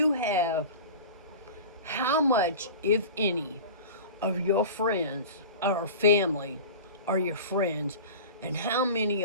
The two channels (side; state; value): both; inverted; correlation -0.34